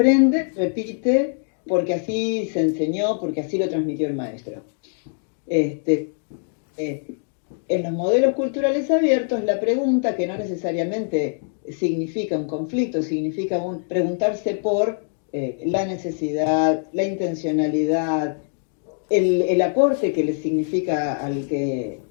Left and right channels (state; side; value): silent; right; digital silence